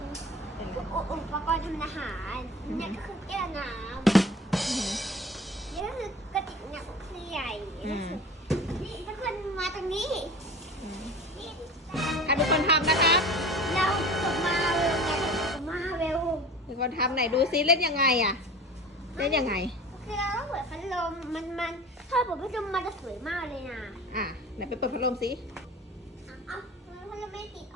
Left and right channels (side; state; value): both; normal; correlation 0.38